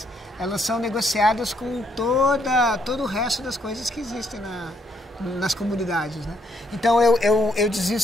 elas são negociadas com todo o resto das coisas que existem nas comunidades, né? Então, eu dizia o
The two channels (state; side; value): normal; both; correlation 0.72